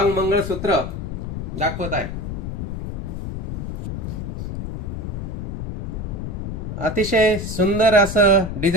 मंगळसूत्र दाखवत आहे. अतिशय सुंदर असं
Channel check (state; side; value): noise; left; rumble, 5 dB below the sound